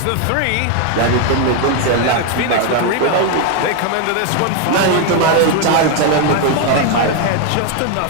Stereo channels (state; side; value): different; both; correlation 0.01